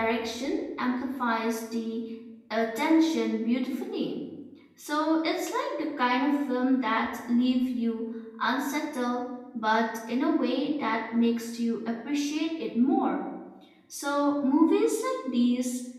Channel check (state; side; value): identical; both; correlation 1.00